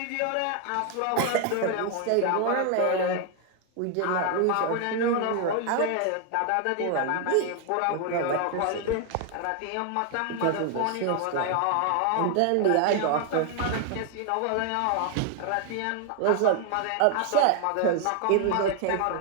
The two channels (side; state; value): both; different; correlation 0.00